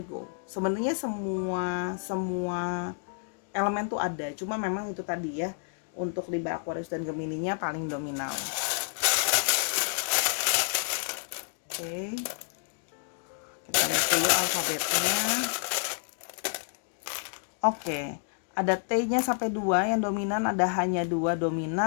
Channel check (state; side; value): silent; right; 58 dB below the other